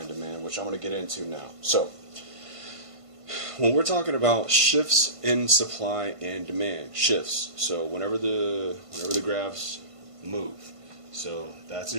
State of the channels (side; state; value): left; late; 1.5 ms